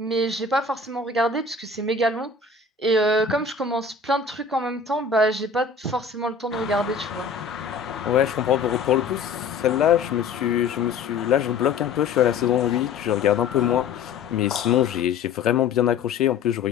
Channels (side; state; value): right; quieter; 5.1 dB